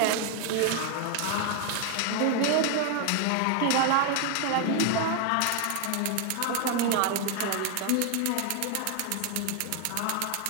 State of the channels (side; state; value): both; different; correlation 0.00